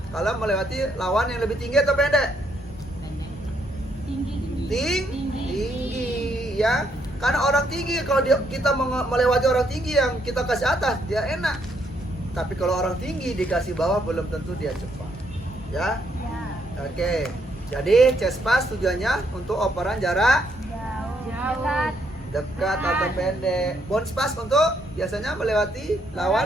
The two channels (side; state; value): both; normal; correlation 0.73